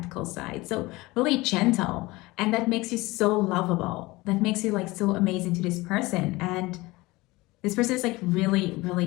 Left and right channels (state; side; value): quieter; right; 21.3 dB